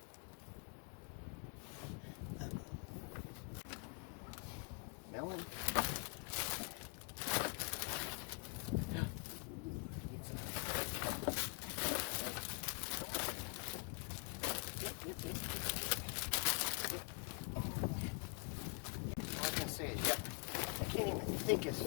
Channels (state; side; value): quieter; right; 37.6 dB